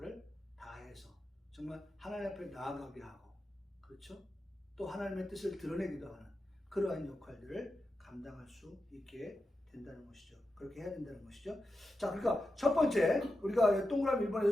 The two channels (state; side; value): normal; both; correlation 0.90